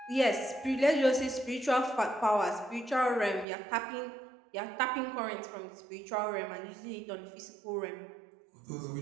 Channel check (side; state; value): left; drops out; at 3.5 s